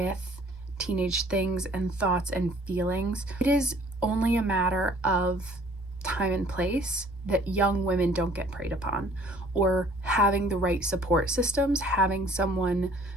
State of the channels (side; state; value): both; normal; correlation 0.55